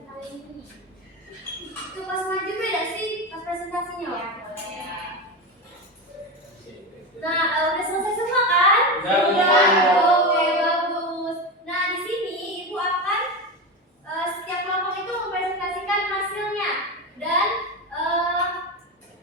ini? Itu pas maju beda sih pas presentasinya. Nah, udah selesai semua kan? Udah. Oke, bagus. Nah, di sini Ibu akan setiap kelompok itu mempresentasikan hasilnya dan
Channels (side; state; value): both; normal; correlation 0.19